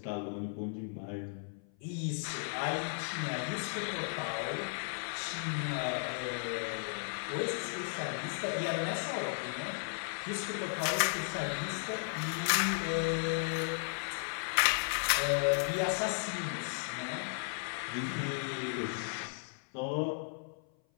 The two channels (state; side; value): silent; right; 54 dB below the other